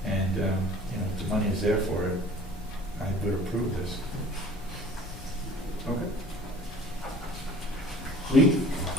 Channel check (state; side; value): normal; both; correlation 0.48